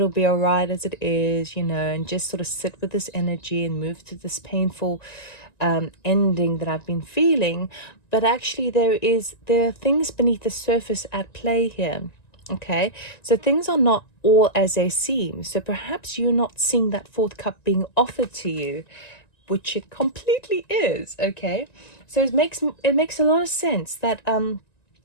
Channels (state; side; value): late; right; 1.9 ms